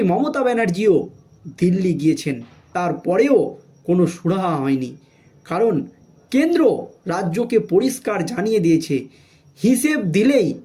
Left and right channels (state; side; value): identical; both; correlation 1.00